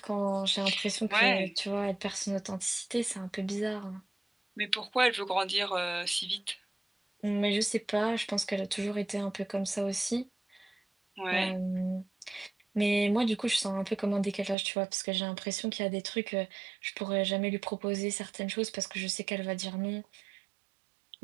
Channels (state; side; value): drops out; left; at 14.6 s